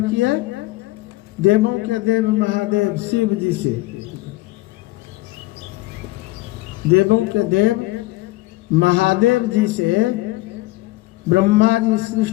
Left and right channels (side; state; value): right; quieter; 19.6 dB